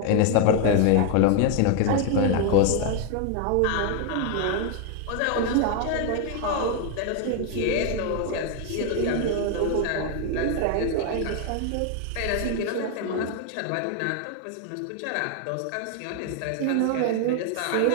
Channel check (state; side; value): different; both; correlation 0.01